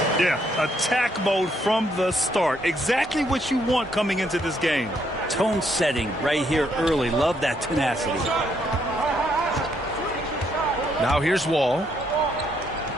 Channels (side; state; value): both; normal; correlation 0.73